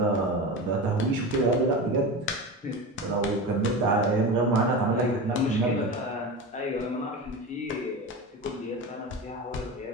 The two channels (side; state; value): both; normal; correlation 0.26